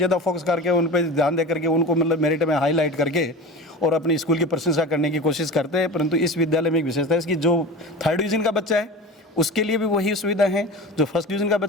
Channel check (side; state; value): both; normal; correlation 0.32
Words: फोकस करके उन पर ध्यान दे करके उनको मतलब मेरिट में हाईलाइट करके और अपनी स्कूल की प्रशंसा करने की कोशिश करते हैं। परंतु इस विद्यालय में एक विशेषता है इसकी, जो 3rd डिवीजन का बच्चा है उसके लिए भी वही सुविधा है। जो फर्स्ट डिवीज़न का